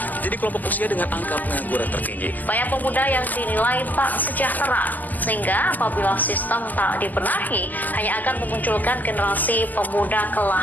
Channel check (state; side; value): late; right; 0.083 ms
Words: jadi kelompok usia dengan angka pengangguran tertinggi. Banyak pemuda yang dinilai tak sejahtera, sehingga apabila sistem tak dibenahi, hanya akan memunculkan generasi pemuda